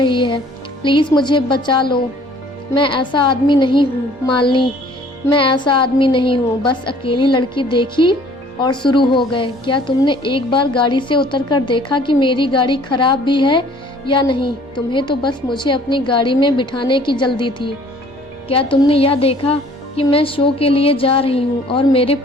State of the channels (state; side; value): normal; both; correlation 0.55